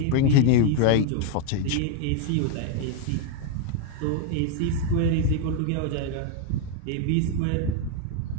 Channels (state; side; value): different; both; correlation 0.01